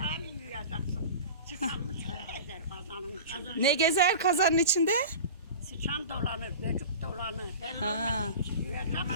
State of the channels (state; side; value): inverted; both; correlation -0.35